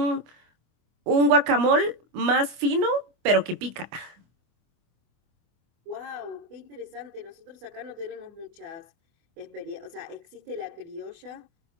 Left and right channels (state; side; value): late; left; 24 ms